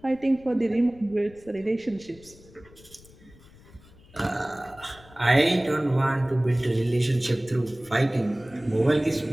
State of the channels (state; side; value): noise; left; rumble, 24 dB below the sound